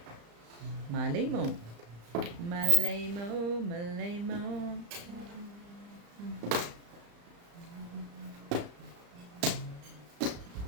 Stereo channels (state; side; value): late; left; 35 ms